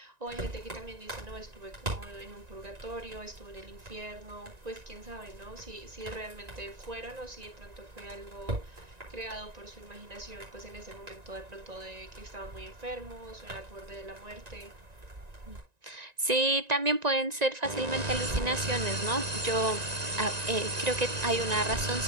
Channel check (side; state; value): left; late; 1.9 ms